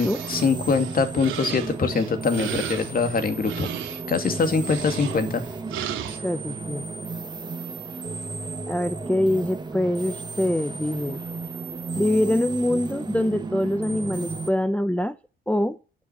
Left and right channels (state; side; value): normal; both; correlation 0.73